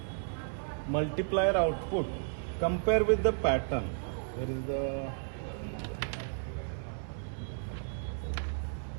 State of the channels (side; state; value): left; silent; digital silence